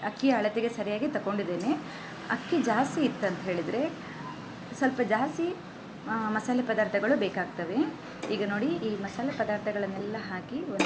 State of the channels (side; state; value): both; identical; correlation 1.00